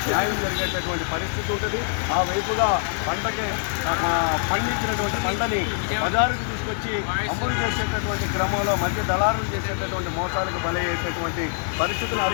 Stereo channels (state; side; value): silent; right; digital silence